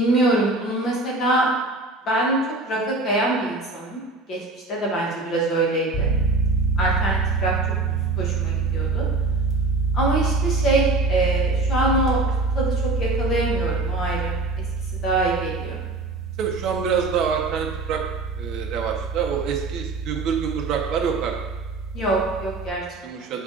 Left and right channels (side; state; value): left; quieter; 3.2 dB